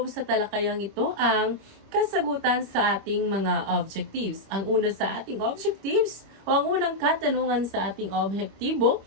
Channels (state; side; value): late; left; 25 ms